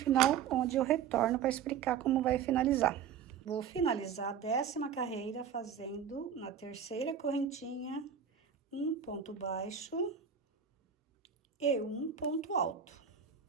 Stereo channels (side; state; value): left; quieter; 7.9 dB